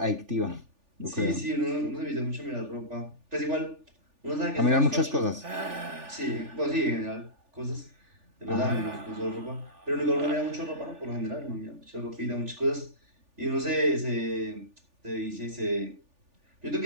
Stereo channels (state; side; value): late; left; 3.4 ms